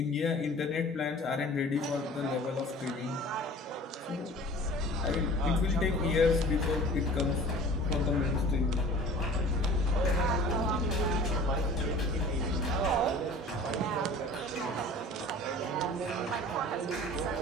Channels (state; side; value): normal; both; correlation 0.44